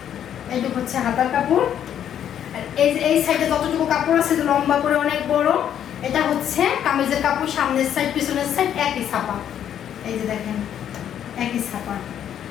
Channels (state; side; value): quieter; right; 9.8 dB